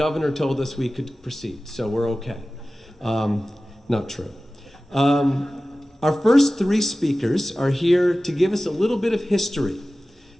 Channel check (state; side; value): normal; both; correlation 0.96